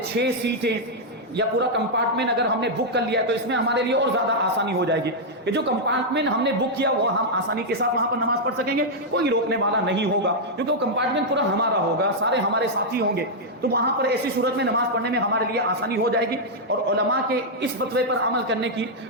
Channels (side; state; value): both; normal; correlation -0.04